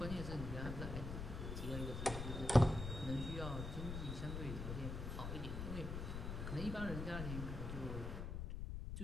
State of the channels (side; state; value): left; noise; rumble, 4 dB below the sound